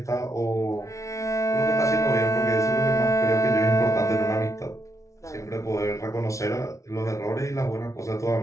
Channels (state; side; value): late; right; 0.15 ms